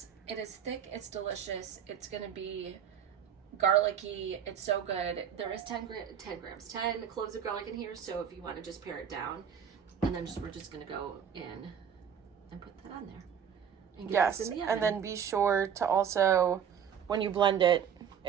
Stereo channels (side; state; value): left; quieter; 8.2 dB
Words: It is thick. It's delicious. It's gonna be garlicky. It's so good. There is 10 cloves of garlic in here, so if you want to just pare it down, and then we're just gonna go in and put that on there. And get this in the oven. And then be sure to also, when you blend it,